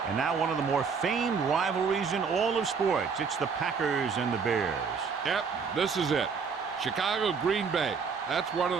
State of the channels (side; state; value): left; quieter; 5.7 dB